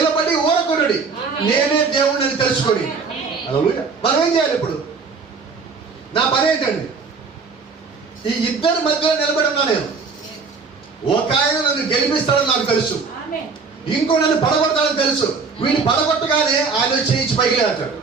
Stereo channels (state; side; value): quieter; left; 4.8 dB